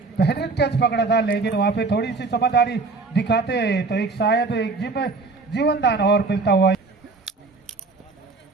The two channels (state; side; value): quieter; left; 3.9 dB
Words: बेहतरीन कैच पकड़ा था, लेकिन वहां पे थोड़ी सी समझदारी दिखाते तो एक शायद एक जीवन दान और मिलता हुआ।